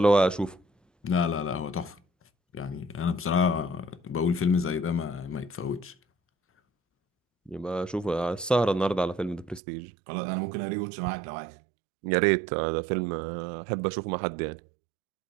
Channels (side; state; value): left; drops out; at 9.6 s